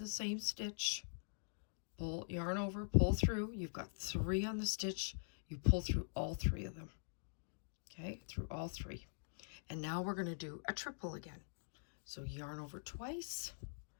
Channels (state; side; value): silent; right; digital silence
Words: same stitch, pull, yarn over, pull through. You've got 3 on the stitch. You pull through all 3 of them. Okay, through all 3. And now we're going to do a triple again. So yarn over twice,